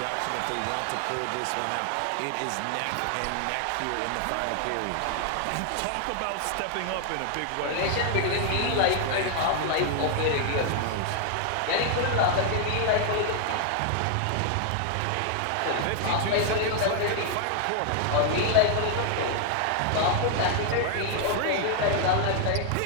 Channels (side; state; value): both; different; correlation 0.00